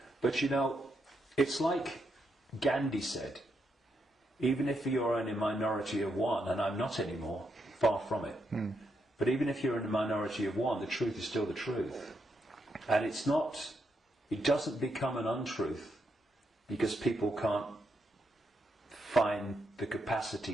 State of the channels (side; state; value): both; normal; correlation 0.81